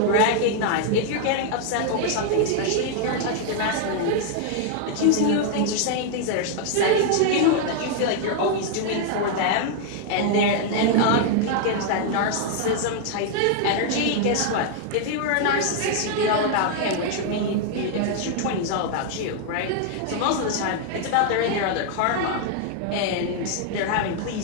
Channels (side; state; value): both; different; correlation 0.00